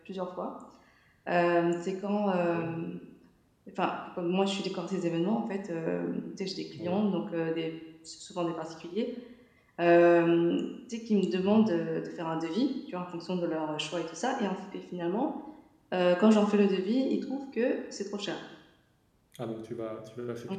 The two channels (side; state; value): both; identical; correlation 1.00